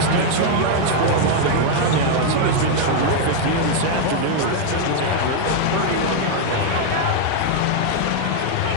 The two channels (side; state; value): both; different; correlation 0.00